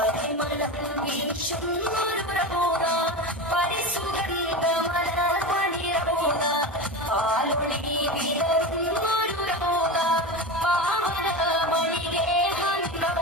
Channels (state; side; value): normal; both; correlation 0.24